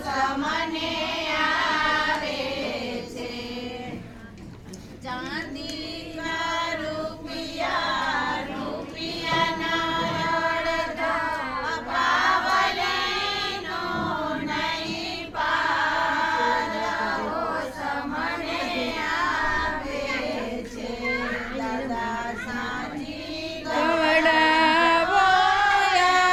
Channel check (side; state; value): both; identical; correlation 1.00